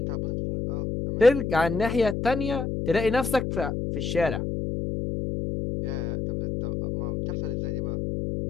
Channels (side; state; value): left; noise; hum, 3 dB below the sound